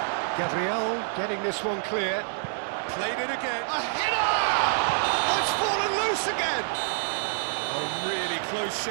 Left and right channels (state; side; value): silent; left; 60 dB below the other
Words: Gabriel getting this one clear. Played it again. A header! Oh, it's fallen loose again! A really close